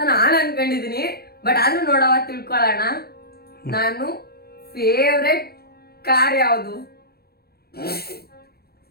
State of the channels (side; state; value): right; late; 0.46 ms